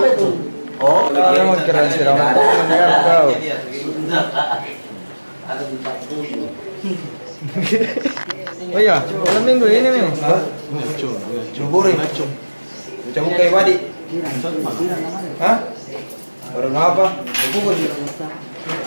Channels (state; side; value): inverted; both; correlation -1.00